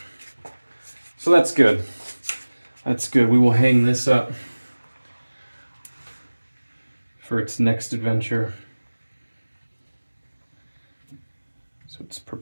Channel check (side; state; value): both; inverted; correlation -1.00